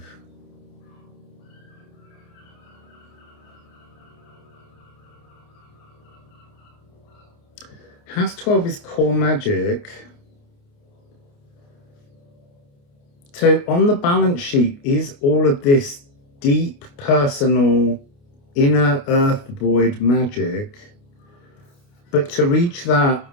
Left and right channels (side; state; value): right; late; 29 ms